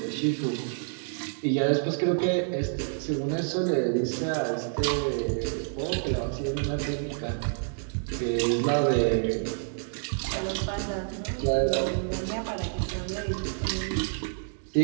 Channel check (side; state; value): left; silent; digital silence